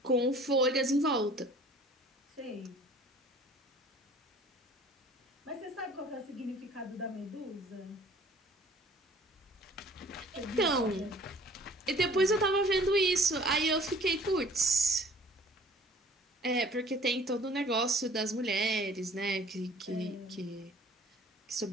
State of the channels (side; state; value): both; normal; correlation 0.51